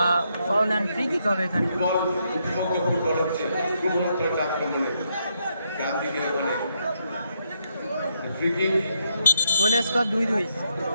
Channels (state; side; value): inverted; both; correlation -0.77